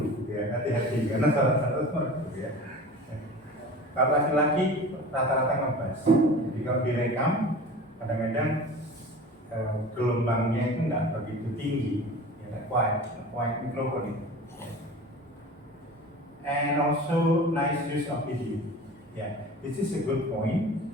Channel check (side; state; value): both; normal; correlation 0.38